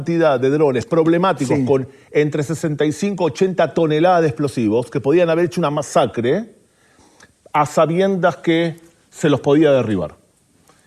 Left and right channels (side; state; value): both; identical; correlation 1.00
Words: de drones problemáticos con entre 65 y 80 toneladas de explosivos que podían haber hecho una masacre a sabiendas que se los podía derribar.